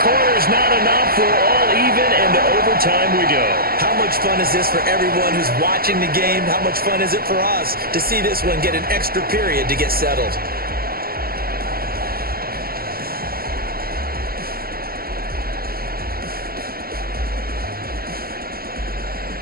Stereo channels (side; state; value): left; late; 0.44 ms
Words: quarters not enough. For all even, and to overtime we go. How much fun is this for everyone who's watching the game? How much fun is it for us to see this one get an extra period to get settled?